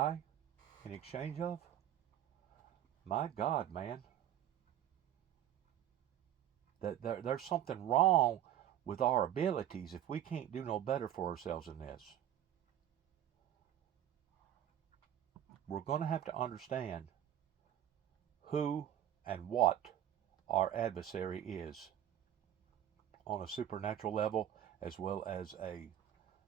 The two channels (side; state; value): left; quieter; 11.3 dB